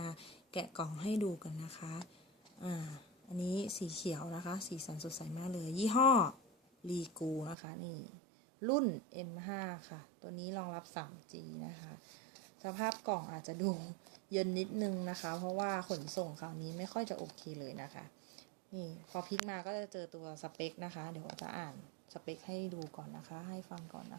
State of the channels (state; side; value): drops out; left; at 7.6 s